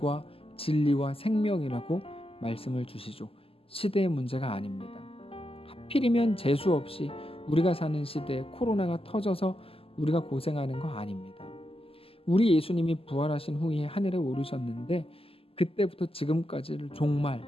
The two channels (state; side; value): late; right; 0.27 ms